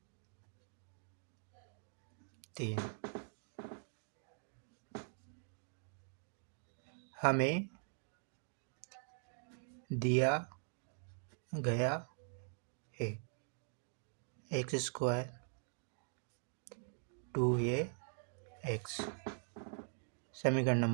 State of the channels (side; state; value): left; silent; digital silence